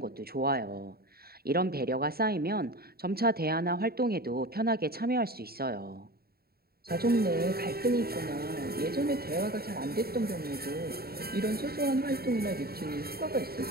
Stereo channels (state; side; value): late; left; 0.45 ms